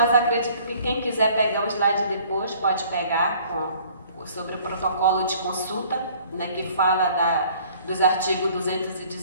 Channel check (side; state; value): both; inverted; correlation -0.55